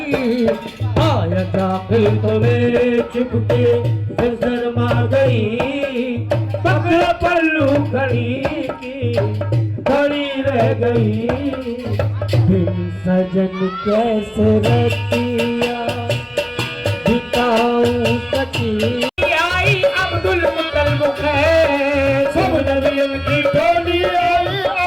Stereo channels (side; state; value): both; identical; correlation 1.00